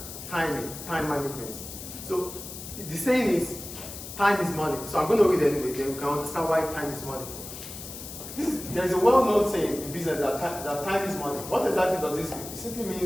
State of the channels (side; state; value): left; noise; hiss, 11 dB below the sound